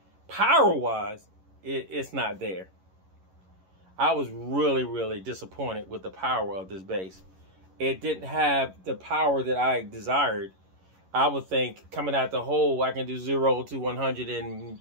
Power-wise, it's not there. I was really, really disappointed with the power of this bass. It didn't have the power that I desired. I would think coming out the hole, I can do 0 to 100 in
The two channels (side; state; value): left; late; 11 ms